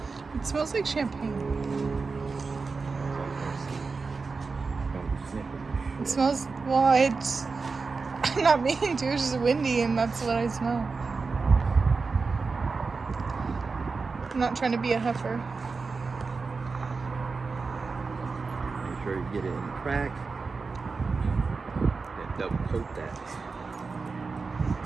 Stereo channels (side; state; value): left; quieter; 4.4 dB